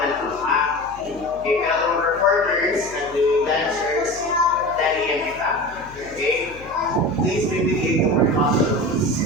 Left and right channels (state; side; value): noise; left; hum, 20 dB below the sound